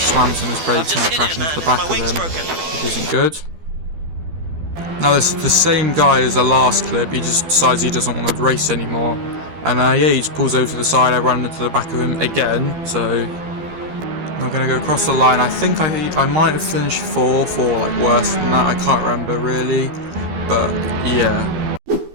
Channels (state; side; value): late; left; 12 ms